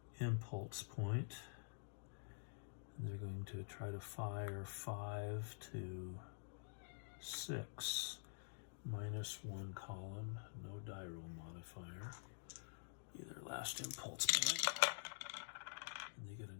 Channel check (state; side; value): silent; right; digital silence